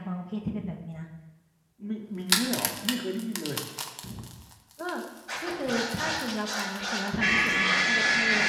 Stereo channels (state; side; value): identical; both; correlation 1.00